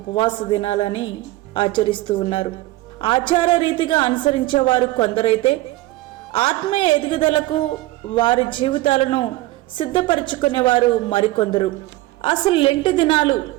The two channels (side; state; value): left; quieter; 18.1 dB